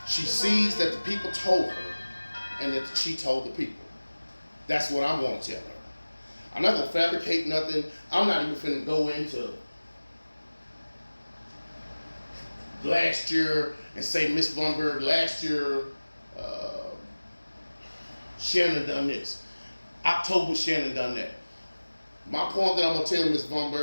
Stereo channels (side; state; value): both; inverted; correlation -1.00